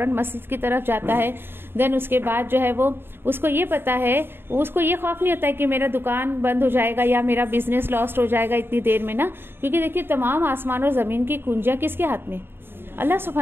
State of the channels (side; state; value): left; late; 0.11 ms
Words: मस्जिद की तरफ जाता है। देन उसके बाद जो है वो उसको ये पता है, उसको ये खौफ नहीं होता है कि मेरा दुकान बंद हो जाएगा या मेरा बिजनेस लॉस्ट हो जाएगा इतनी देर में ना, क्योंकि देखिए तमाम आसमान और जमीन की कुंजियां किसके हाथ में? अल्लाह